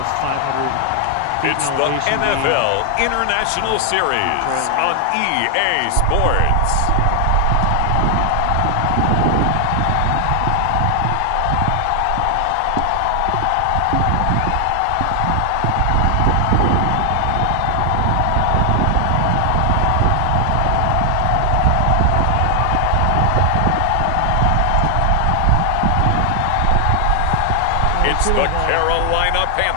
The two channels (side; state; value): both; different; correlation 0.00